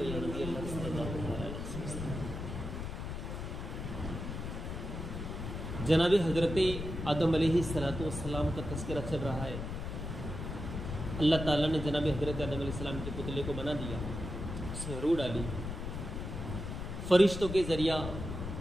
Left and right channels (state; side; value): noise; left; rumble, 6 dB below the sound